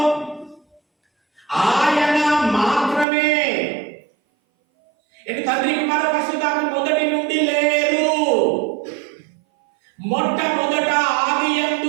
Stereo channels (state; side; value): drops out; left; at 3.1 s